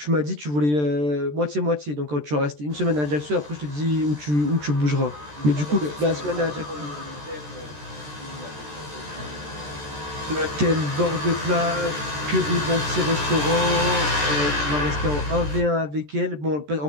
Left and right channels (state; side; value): late; left; 14 ms